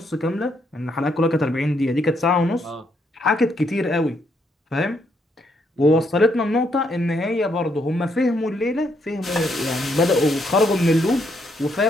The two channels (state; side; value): normal; both; correlation 0.74